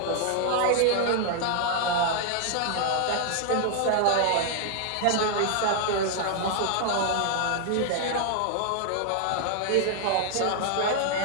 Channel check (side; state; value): both; different; correlation 0.00